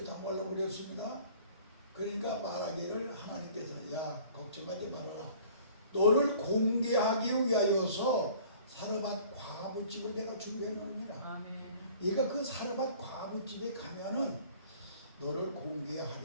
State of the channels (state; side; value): inverted; both; correlation -0.51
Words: 다 말라버렸습니다. 그러니까 말하기를 하나님께서 야 걱정하지 말아라. 너를 공개하기 위하여서 사르밧 과부집을 내가 준비해 놓으니라. 아멘. 네가 그 사르밧 과부집에 가면은 너를